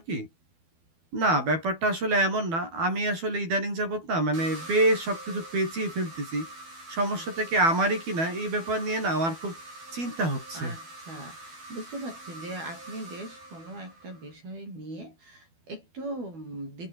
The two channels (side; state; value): left; late; 12 ms